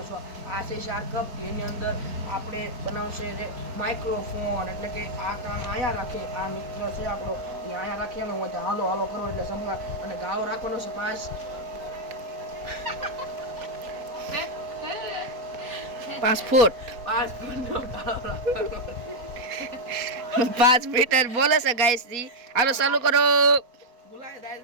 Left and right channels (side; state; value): left; late; 4.1 ms